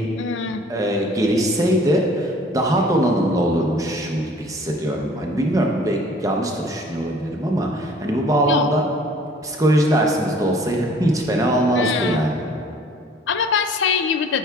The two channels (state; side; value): normal; both; correlation 0.52